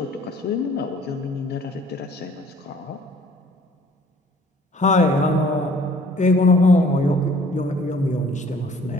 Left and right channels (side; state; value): both; normal; correlation 0.55